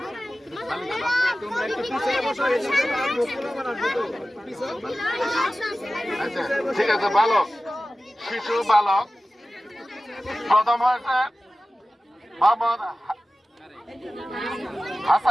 আচ্ছা ঠিক আছে বালক শিশু বালক প্রথম হয়েছে মোহাম্মদ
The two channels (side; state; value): both; normal; correlation 0.96